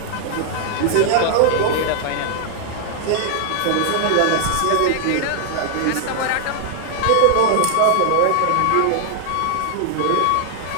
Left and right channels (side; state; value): both; different; correlation 0.00